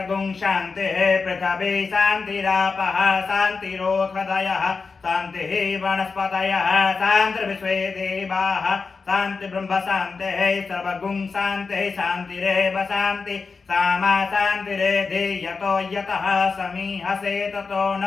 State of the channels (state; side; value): quieter; right; 4.7 dB